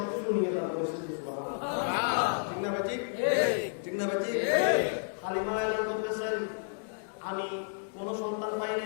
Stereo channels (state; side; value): silent; right; digital silence